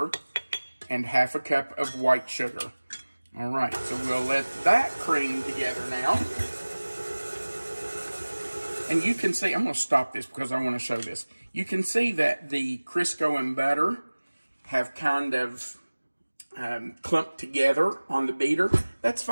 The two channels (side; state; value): both; inverted; correlation -1.00